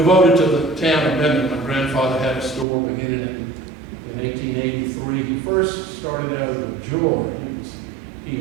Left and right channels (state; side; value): drops out; left; at 2.7 s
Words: to the town of Minden. My grandfather had a store beginning in 1883. He first started out as a jeweler. He